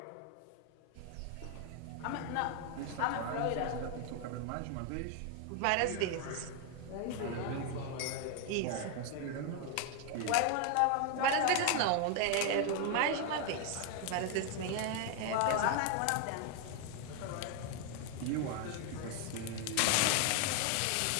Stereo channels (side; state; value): both; different; correlation 0.01